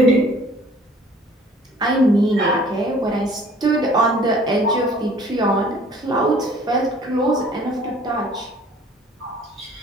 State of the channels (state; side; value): normal; both; correlation 0.53